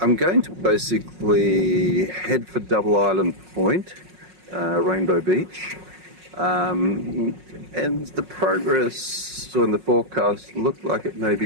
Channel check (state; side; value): late; left; 5.5 ms